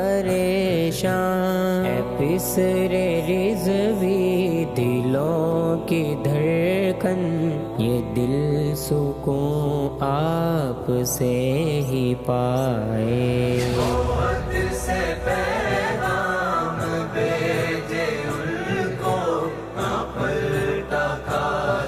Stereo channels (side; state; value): both; identical; correlation 1.00